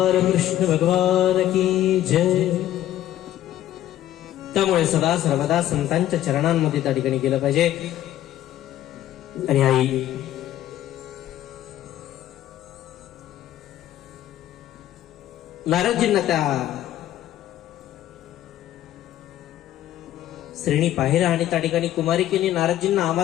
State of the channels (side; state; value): right; quieter; 12.9 dB